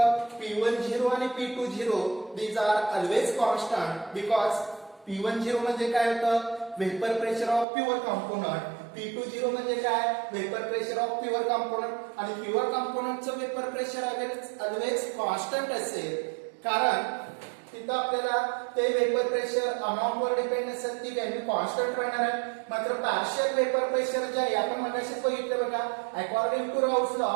P10 आणि P20 these are always constant because P10 म्हणजे काय होतं, vapour pressure of pure component, P20 म्हणजे काय, vapour pressure of pure component. आणि प्युअर कंपोनंटचं वेपर प्रेशर ऑलवेज कॉन्स्टंट असेल, कारण तिथं आपल्याला ते वेपर प्रेशर अमाउंट वर डिपेंड असेल, ती व्हॅल्यू कॉन्स्टंट राहणार आहे. मात्र पार्शियल वेपर प्रेशर जे आहे आपण मगाशीच बघितलं बघा, according to Raoult's law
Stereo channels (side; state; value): left; drops out; at 7.7 s